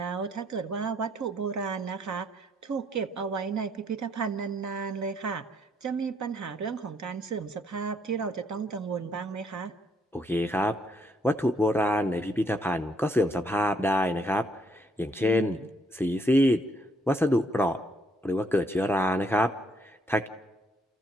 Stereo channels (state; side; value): normal; both; correlation 0.70